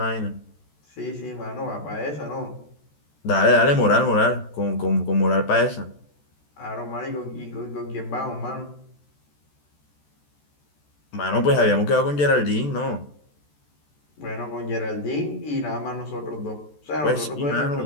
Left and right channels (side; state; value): right; late; 14 ms